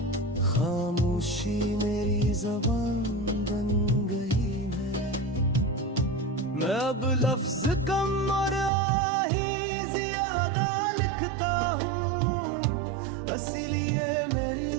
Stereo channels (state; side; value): drops out; left; at 8.7 s